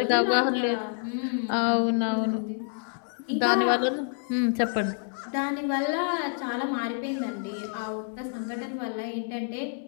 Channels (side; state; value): right; silent; 59 dB below the other